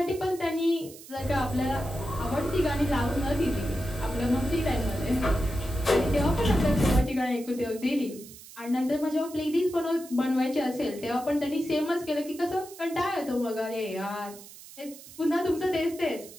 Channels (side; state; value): right; noise; hiss, 18 dB below the sound